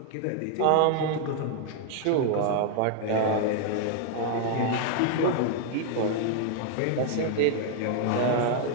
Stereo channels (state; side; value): different; both; correlation 0.00